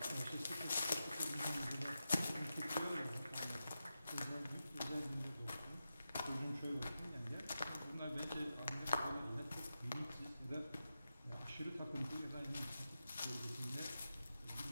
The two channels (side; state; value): both; inverted; correlation -0.90